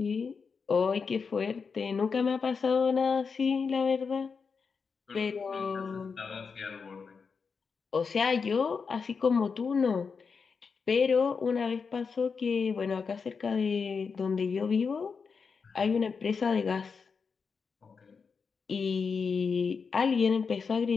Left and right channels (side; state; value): right; quieter; 5.4 dB